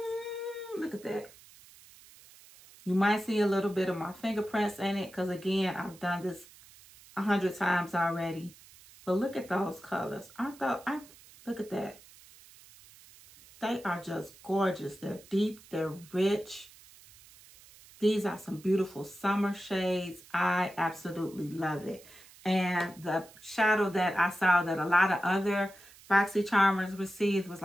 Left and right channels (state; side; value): noise; right; hiss, 23 dB below the sound